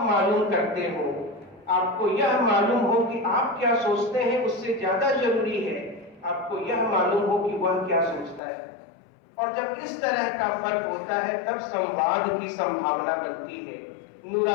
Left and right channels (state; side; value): drops out; right; at 8.4 s